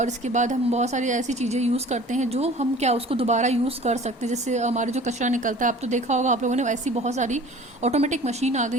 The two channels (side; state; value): both; normal; correlation 0.45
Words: इसके बाद हम बहुत सारी ऐसी चीज़ें यूज़ करते हैं जो हम क्या उसको दोबारा यूज़ कर सकते हैं। जैसे हमारे जो कचरा निकलता है, आप तो देखा होगा आप लोगों ने, ऐसी बहुत सारी ऑटोमेटिक मशीन आ